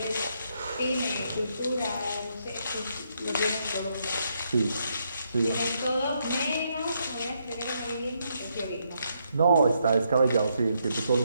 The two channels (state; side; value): inverted; both; correlation -0.77